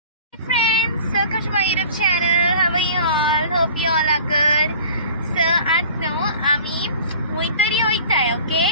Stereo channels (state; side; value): inverted; both; correlation -0.44